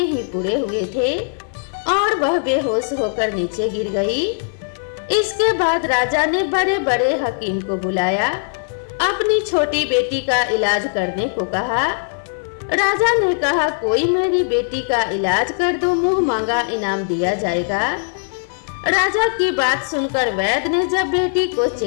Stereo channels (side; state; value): right; silent; 56 dB below the other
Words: ही पूरे हुए थे और वह बेहोश होकर नीचे गिर गई। इसके बाद राजा ने बड़े बड़े हकीम को बुलाया, अपनी छोटी बेटी का इलाज करने को कहा। राजा ने कहा, कोई मेरी बेटी का इलाज कर दो, मुंह मांगा इनाम दिया जाएगा। राजा की बात सुनकर वैद्य ने जब बेटी को